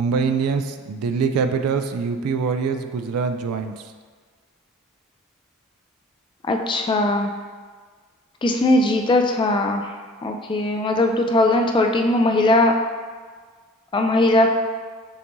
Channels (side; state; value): both; normal; correlation 0.46